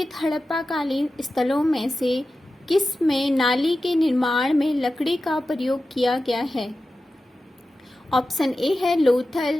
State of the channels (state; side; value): normal; both; correlation 0.93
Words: हड़प्पाकालीन स्थलों में से किस में नाली के निर्माण में लकड़ी का प्रयोग किया गया है? ऑप्शन ए है